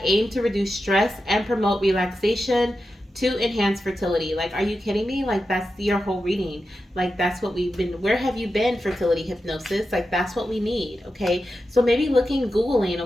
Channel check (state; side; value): normal; both; correlation 0.90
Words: aim to reduce stress and promote relaxation to enhance fertility. Like, are you kidding me? Like, that's your whole reading. Like, that's what we've been, where have you been, fertility hypnosis? Like, that's what we need, okay? So maybe Googling,